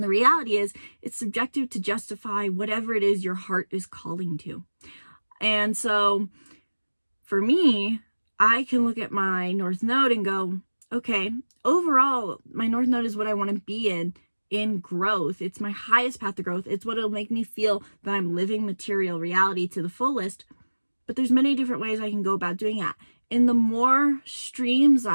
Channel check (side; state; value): both; inverted; correlation -1.00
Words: the reality is it's subjective to justify whatever it is your heart is calling to. And so for me, I can look at my North Node and go, okay, overall, my North Node is what I want to be in growth. It's my highest path to growth. It's what will make me feel that I'm living material reality to the fullest. But there's many different ways I can go about doing that. And the more streams